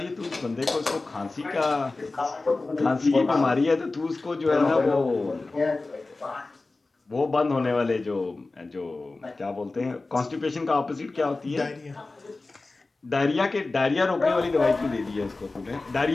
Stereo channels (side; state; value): right; quieter; 3.4 dB